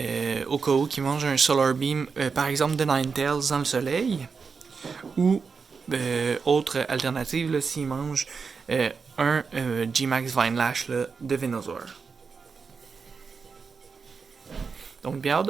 au cas où qui mange un Solar Beam, par exemple de Ninetales dans le soleil, ou autre alternative, s'il mange un G-Max Vinelash là, de Venusaur. Donc bien hâte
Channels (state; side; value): quieter; left; 5.3 dB